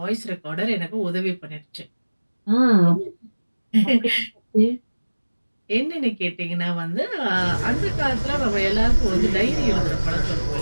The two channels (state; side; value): inverted; both; correlation -1.00